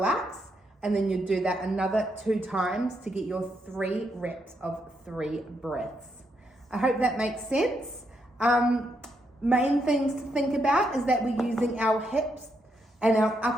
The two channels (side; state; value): both; normal; correlation 0.79